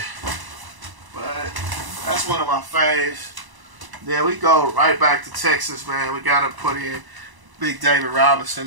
but that's one of my faves. Then we go right back to Texas, man. We gotta put in Big David Robinson,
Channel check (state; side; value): late; left; 1.0 ms